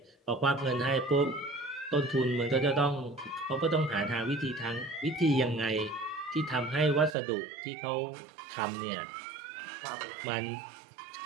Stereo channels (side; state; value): left; drops out; at 7.2 s